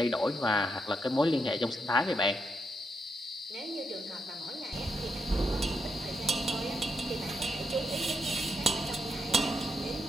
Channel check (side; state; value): both; normal; correlation 0.80